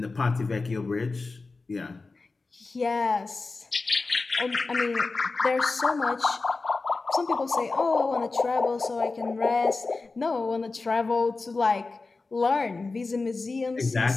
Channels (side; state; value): right; quieter; 3.8 dB